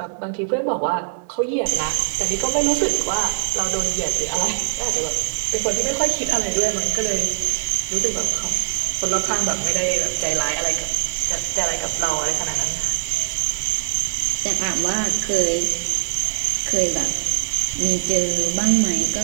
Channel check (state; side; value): silent; left; 64 dB below the other